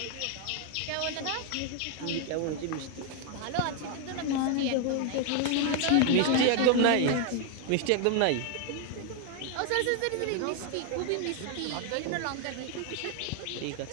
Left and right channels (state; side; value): different; both; correlation 0.00